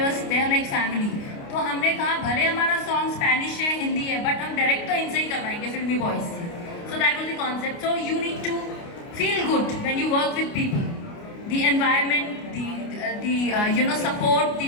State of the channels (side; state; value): right; late; 29 ms